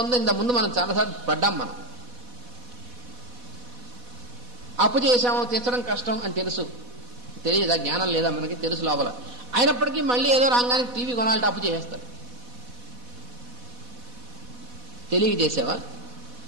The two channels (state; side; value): late; left; 4.1 ms